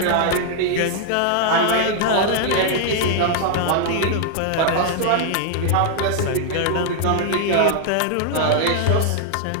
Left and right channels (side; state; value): both; different; correlation 0.00